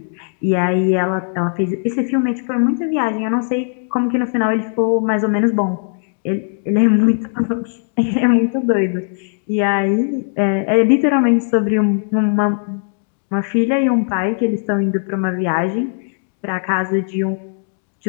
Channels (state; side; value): silent; right; 67 dB below the other